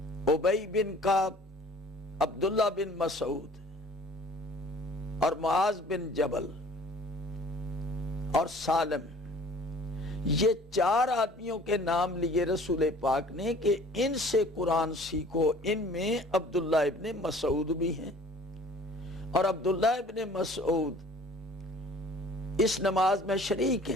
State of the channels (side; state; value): both; normal; correlation 0.50